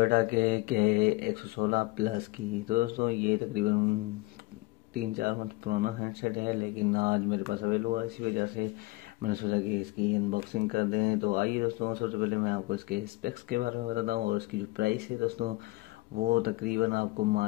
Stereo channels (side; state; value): right; quieter; 22.3 dB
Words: के 116 प्लस की। तो दोस्तों ये तकरीबन 3-4 मंथ पुराना हैंडसेट है, लेकिन आज मेरे पास अवेलेबल हुआ, इसी वजह से मैंने सोचा कि इसकी अनबॉक्सिंग कर दें। तो आइए दोस्तों, सबसे पहले मैं आपको इसके स्पेक्स के बारे में बताता हूँ और इसकी जो प्राइस है दोस्तों, वो तकरीबन आपको